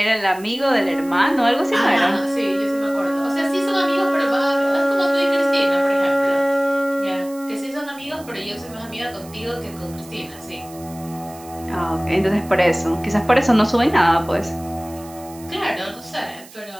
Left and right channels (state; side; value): noise; right; hiss, 20 dB below the sound